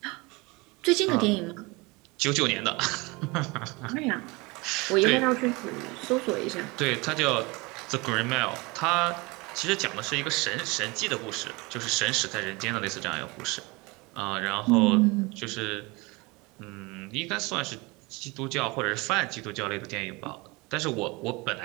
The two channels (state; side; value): quieter; left; 25.3 dB